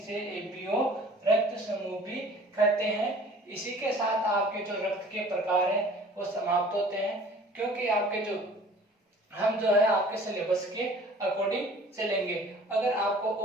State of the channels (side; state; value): both; normal; correlation 0.49